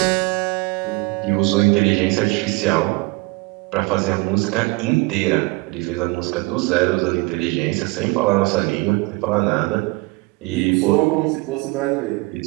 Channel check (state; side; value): quieter; left; 25.5 dB